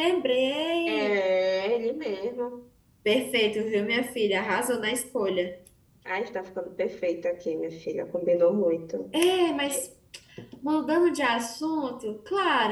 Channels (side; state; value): both; identical; correlation 1.00